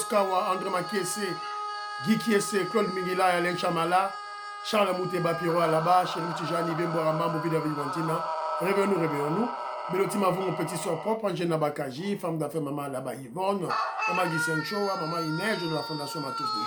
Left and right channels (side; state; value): both; identical; correlation 1.00